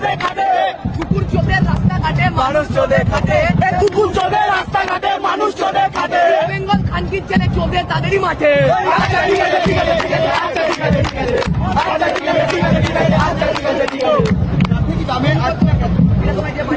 খাটে। কুকুর চোদে রাস্তাঘাটে মানুষ চোদে খাটে। কুকুর চোদে রাস্তাঘাটে মানুষ চোদে খাটে। বেঙ্গল খানকির ছেলে চোদে তাদেরই মাঠে। আচ্ছা ঠিক আছে ঠিক আছে ঠিক আছে আচ্ছা ঠিক আছে ঠিক আছে আচ্ছা ঠিক আছে ঠিক আছে ঠিক আছে আচ্ছা ঠিক আছে ঠিক আছে।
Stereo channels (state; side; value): identical; both; correlation 1.00